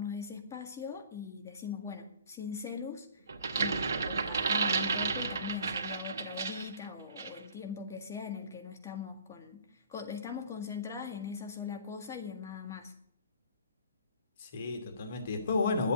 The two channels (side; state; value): both; inverted; correlation -0.51